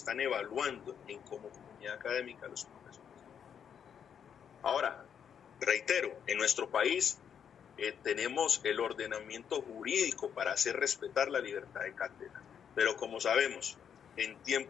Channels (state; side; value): quieter; right; 8.0 dB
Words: evaluando como comunidad académica los profesores. Ahora, reitero, en nuestro país tenemos el ordenamiento jurídico para hacer respetar la libertad de cátedra, pero como sabemos, en